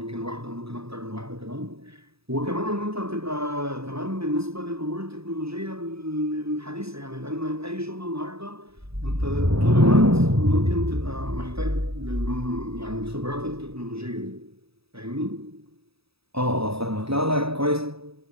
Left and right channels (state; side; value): late; left; 0.77 ms